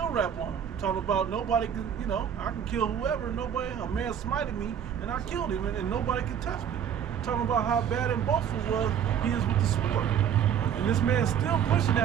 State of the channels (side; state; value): left; quieter; 8.7 dB